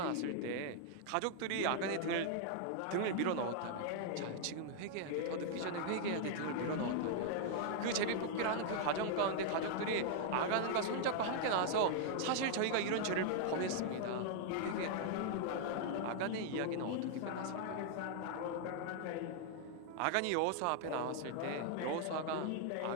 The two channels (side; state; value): both; different; correlation 0.00